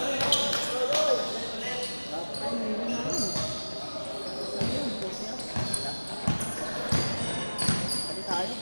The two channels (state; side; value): inverted; both; correlation -1.00